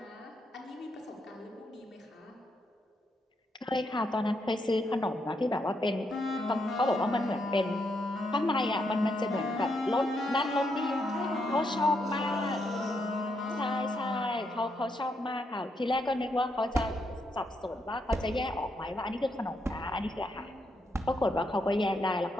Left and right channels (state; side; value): normal; both; correlation 0.79